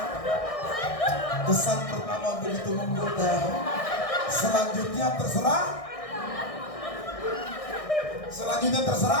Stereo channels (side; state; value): right; late; 1.6 ms